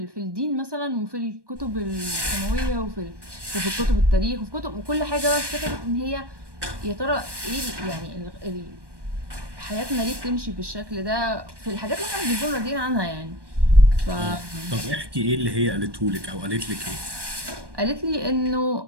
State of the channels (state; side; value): late; left; 1.2 ms